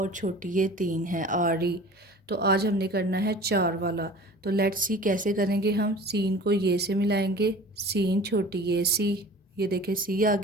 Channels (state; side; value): normal; both; correlation 0.42